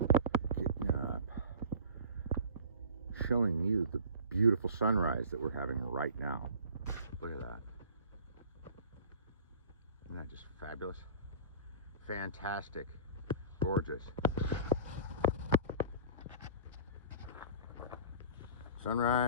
Getting up. Showing you the beautiful sunrise that we're having right now. Look at that. Isn't that just fabulous? Fantastic. Gorgeous.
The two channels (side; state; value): both; inverted; correlation -0.42